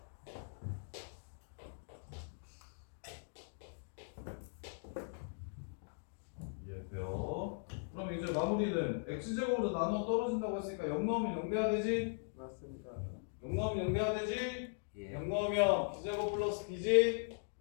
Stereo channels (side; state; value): right; silent; digital silence